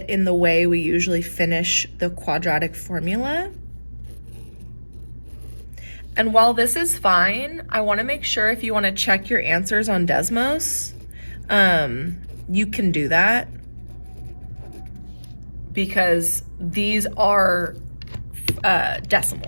in the way we usually finish the quadratic formula. And while this is fine, I want to make sure if you want to check your answers on Desmos, you can do that, because these are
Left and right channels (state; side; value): inverted; both; correlation -1.00